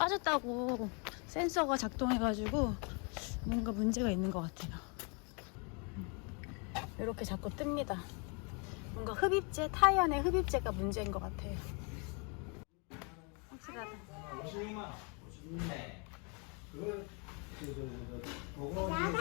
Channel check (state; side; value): quieter; right; 34.4 dB